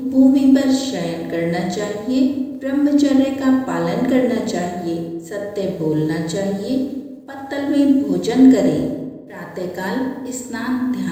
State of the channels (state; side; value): identical; both; correlation 1.00